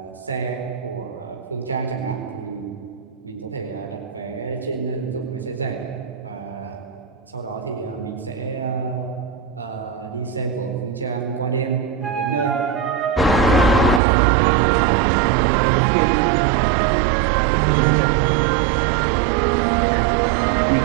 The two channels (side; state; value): left; drops out; at 14.0 s